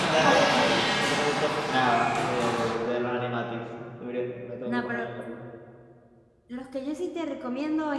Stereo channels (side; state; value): both; identical; correlation 1.00